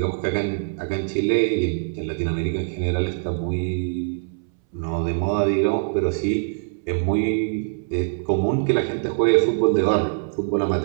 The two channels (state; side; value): silent; left; 63 dB below the other